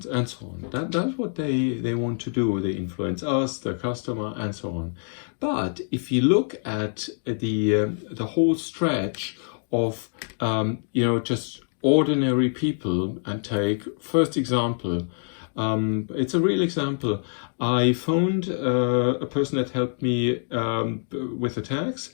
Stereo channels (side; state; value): right; silent; 55 dB below the other